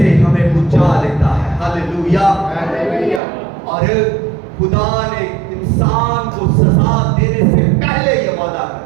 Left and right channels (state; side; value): drops out; left; at 3.2 s